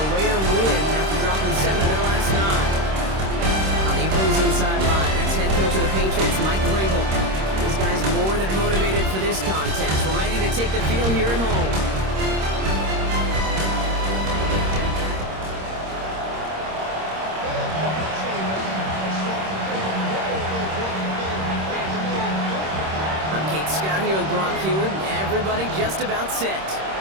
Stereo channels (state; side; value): late; left; 26 ms